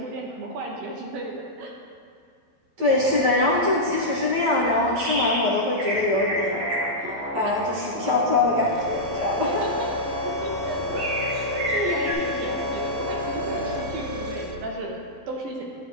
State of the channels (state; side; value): late; left; 12 ms